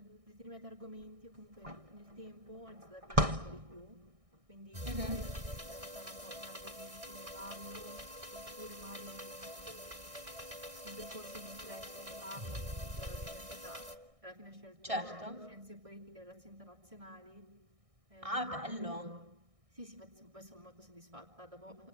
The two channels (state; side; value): late; left; 1.6 ms